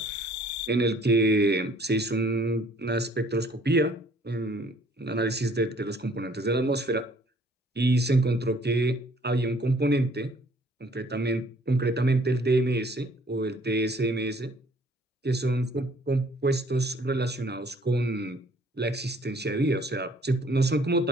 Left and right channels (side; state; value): both; normal; correlation 0.59